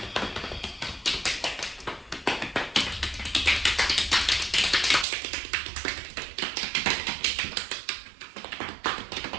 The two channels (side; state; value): left; drops out; at 5.1 s